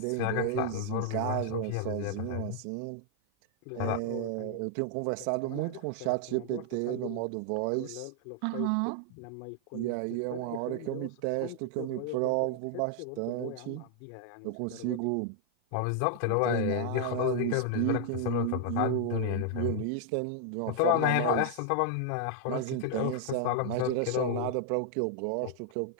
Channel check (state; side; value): different; both; correlation 0.00